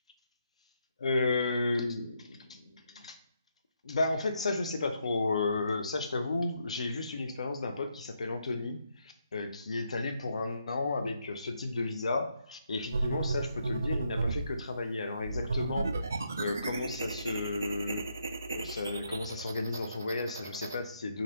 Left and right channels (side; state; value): both; inverted; correlation -0.78